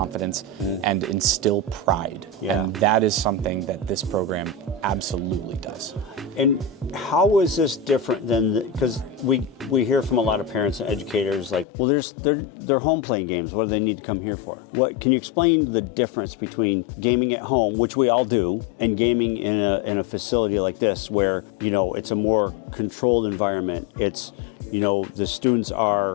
and instill pride. Yeah. And that is something that this program absolutely does. And how is this different than, because we hear from a lot of parents and educators like, well, they're home playing games. What do they need to come here for? What can you explain the difference between gaming at home, which we all do, and gaming in a facility like this, where, you know, it's a more controlled environment? It's, you know, the students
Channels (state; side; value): drops out; right; at 11.7 s